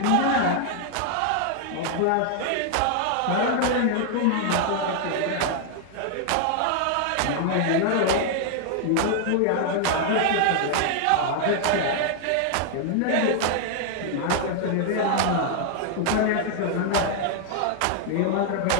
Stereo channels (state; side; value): different; both; correlation 0.00